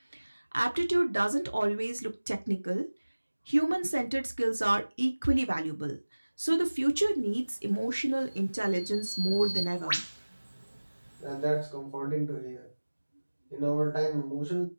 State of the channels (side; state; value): both; inverted; correlation -1.00